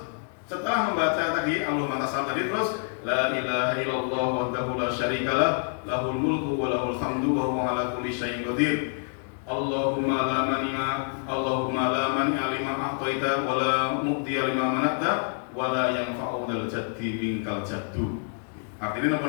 setelah membaca tadi Allahumma tasal tadi, terus la ilaha illallah wahdahu la syarikalah lahul mulku wa lahul hamdu wa huwa ala kulli syai'in qadir. Allahumma la mani'a lima a'taita wa la mu'tiya lima mana'ta wala yanfa'u dzal jaddi minkal jaddu. Artinya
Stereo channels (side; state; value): right; silent; 56 dB below the other